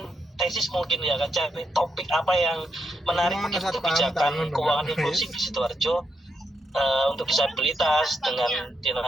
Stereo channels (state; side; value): normal; both; correlation 0.81